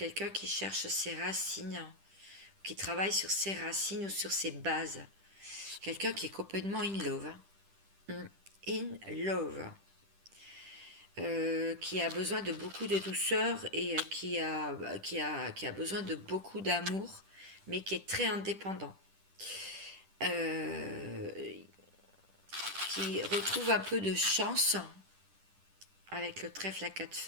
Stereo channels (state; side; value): late; left; 10 ms